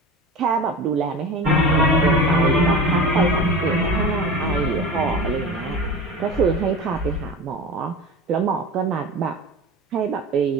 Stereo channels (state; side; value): normal; both; correlation 0.31